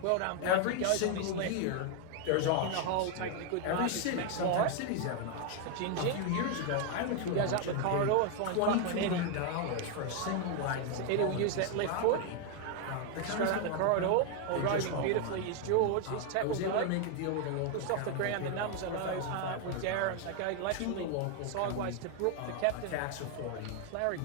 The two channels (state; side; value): different; both; correlation 0.01